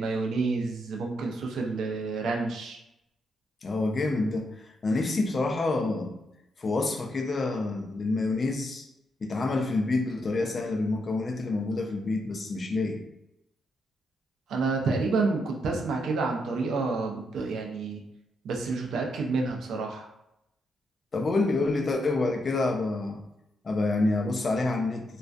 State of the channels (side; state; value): both; normal; correlation 0.80